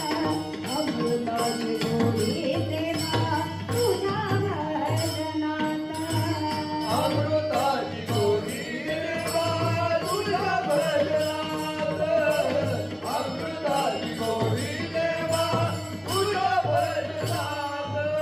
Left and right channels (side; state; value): both; identical; correlation 1.00